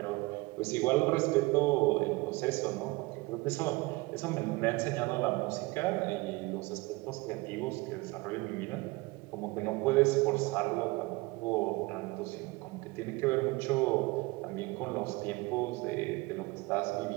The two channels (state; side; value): quieter; left; 23.4 dB